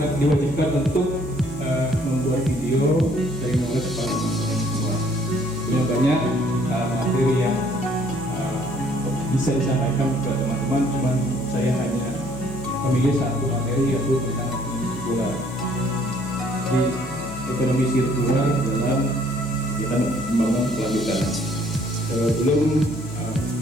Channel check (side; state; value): left; noise; hum, 16 dB below the sound